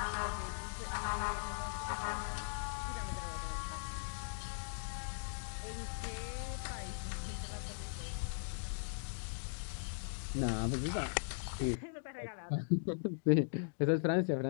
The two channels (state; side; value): silent; right; digital silence